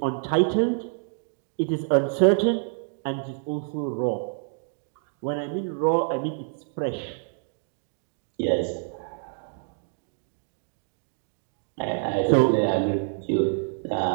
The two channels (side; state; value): left; silent; 60 dB below the other